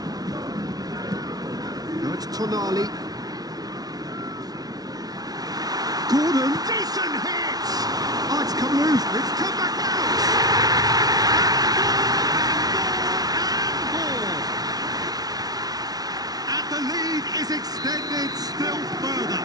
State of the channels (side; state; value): left; late; 0.19 ms